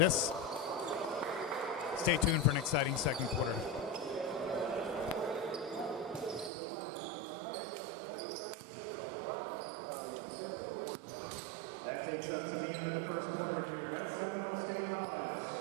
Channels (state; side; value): drops out; left; at 6.5 s